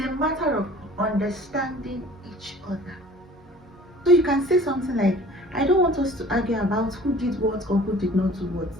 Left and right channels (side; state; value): both; normal; correlation 0.48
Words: a matter of understanding each other. So you can say something like, I don't want us to argue about who did what or who did not do what.